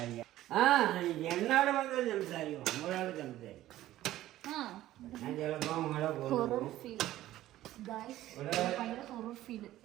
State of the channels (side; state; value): left; quieter; 14.5 dB